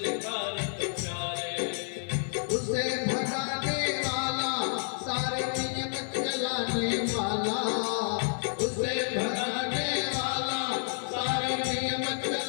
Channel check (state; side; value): silent; right; 58 dB below the other